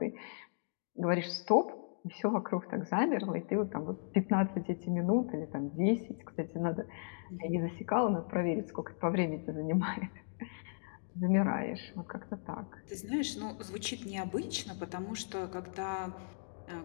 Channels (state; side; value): silent; right; digital silence